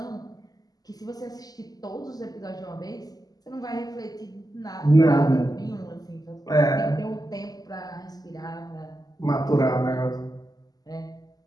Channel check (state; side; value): late; right; 0.18 ms